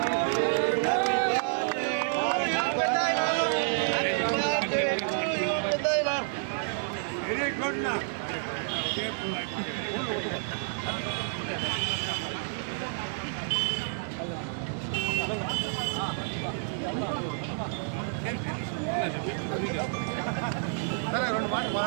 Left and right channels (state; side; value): silent; left; digital silence